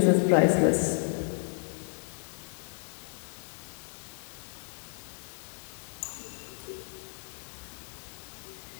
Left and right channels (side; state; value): right; silent; 56 dB below the other